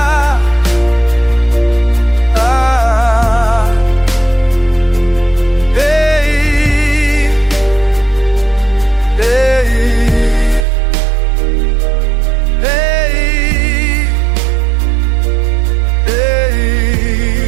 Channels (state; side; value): drops out; left; at 10.7 s